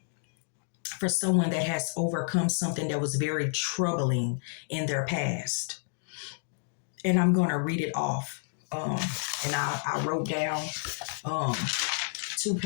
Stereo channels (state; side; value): silent; right; digital silence